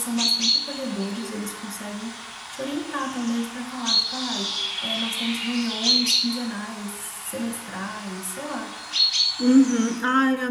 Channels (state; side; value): identical; both; correlation 1.00